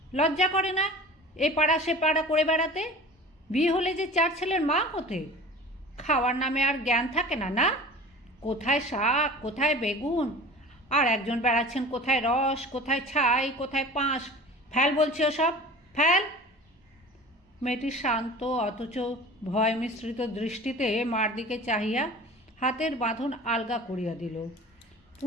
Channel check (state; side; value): normal; both; correlation 0.39